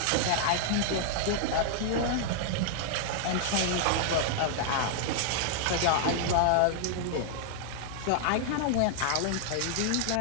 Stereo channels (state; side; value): different; both; correlation -0.01